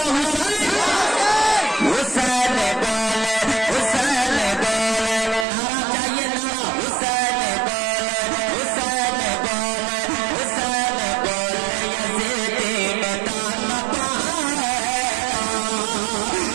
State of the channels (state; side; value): drops out; left; at 5.5 s